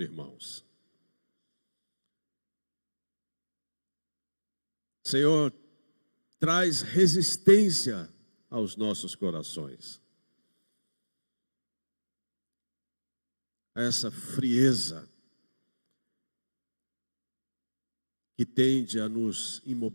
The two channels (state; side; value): inverted; both; correlation -1.00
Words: Senhor, traz resistência aos nossos corações. Essa frieza que tende a nos